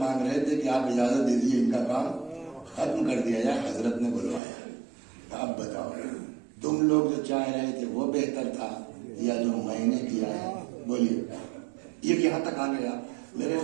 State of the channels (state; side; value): drops out; left; at 4.4 s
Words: رہے تھے کہ آپ اجازت دے دیجیے ان کا کام ختم کر دیا جائے، حضرت نے بلوایا، اب بتاؤ تم لوگ جو چاہ رہے تھے وہ بہتر تھا یا جو میں نے کیا ہے؟ بولیے۔ یہ یہاں تک آ گیا، میرے